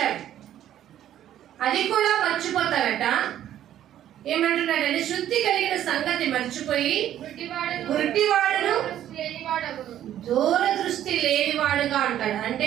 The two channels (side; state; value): left; quieter; 11.5 dB